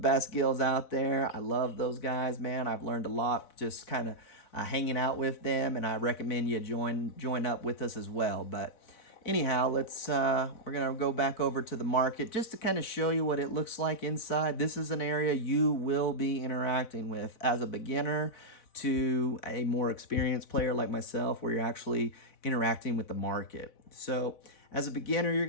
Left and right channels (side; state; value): right; late; 4.1 ms